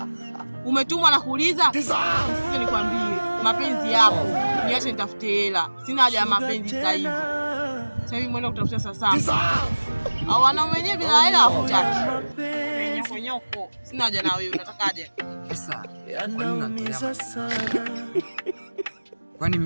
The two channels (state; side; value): inverted; both; correlation -1.00